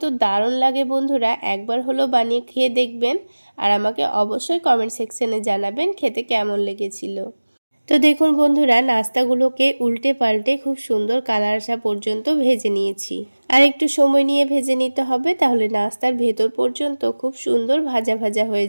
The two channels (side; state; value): both; inverted; correlation -1.00